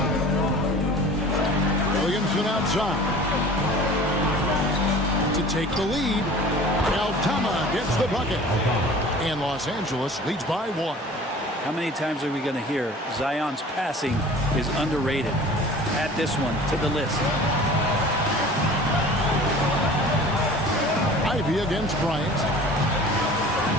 Williamson outside. To take the lead, Aldama gets the bucket. And Los Angeles leads by 1. How many times are we going to hear Zion's passing is underrated? Add this one to the list. Ivy against Bryant.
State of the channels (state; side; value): normal; both; correlation 0.43